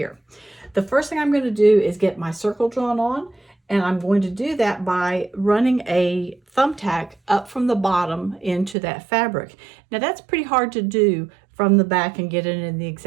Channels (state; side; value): drops out; left; at 8.8 s